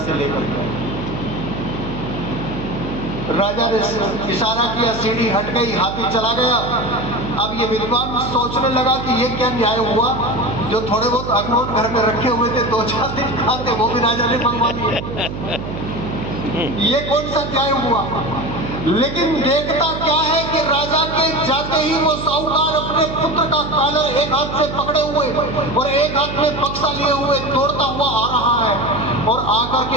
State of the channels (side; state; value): right; noise; hum, 8 dB below the sound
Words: से लेकर गया। राजा ने इशारा किया, सीढ़ी हट गई, हाथी चला गया। अब ये विद्वान सोचने लगा कि ये क्या न्याय हुआ, जो थोड़े बहुत अखरोट घर में रखे हुए थे 2-4 दिन खाते, वो भी राजा ने मंगवा दिए। ये कौन सा न्याय हुआ? लेकिन देखता क्या है कि राजा के जाते ही वो साहूकार अपने पुत्र का कॉलर एक हाथ से पकड़े हुए और एक हाथ में बक्सा लिए हुए दौड़ता हुआ आ रहा है और आकर